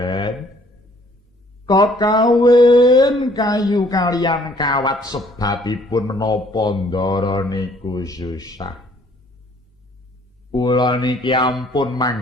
Kakawin kayu kalian kawat sebabipun menapa ndara niku susah. Kula niki ampun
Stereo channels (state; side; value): normal; both; correlation 0.60